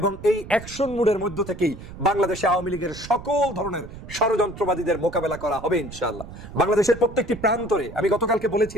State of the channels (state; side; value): noise; right; rumble, 14 dB below the sound